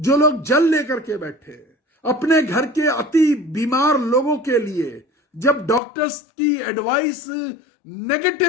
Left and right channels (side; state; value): right; drops out; at 5.8 s